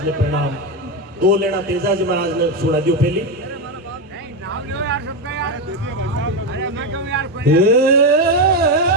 ने प्रणाम। दो लेना तेजाजी महाराज ने सुना दियो पहली।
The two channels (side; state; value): both; normal; correlation 0.11